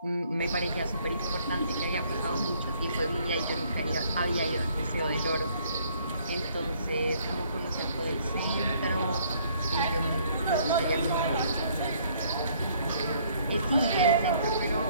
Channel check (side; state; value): both; inverted; correlation -0.63